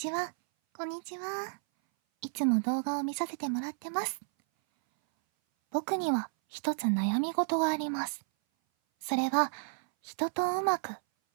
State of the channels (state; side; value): silent; left; 57 dB below the other